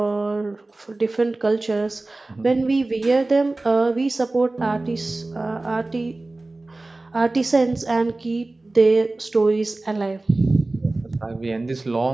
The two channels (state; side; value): quieter; left; 3.0 dB